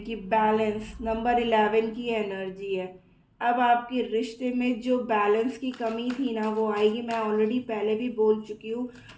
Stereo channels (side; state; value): both; identical; correlation 1.00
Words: बैलेंस नंबर 11 की एनर्जी है। अब आपके रिश्ते में जो बैलेंस की कमी थी ना वो आएगी। मैं ऑलरेडी पहले भी बोल चुकी हूँ,